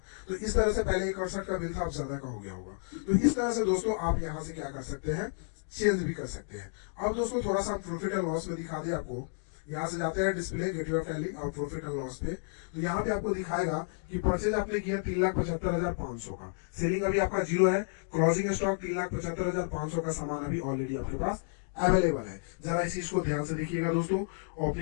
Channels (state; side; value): silent; right; digital silence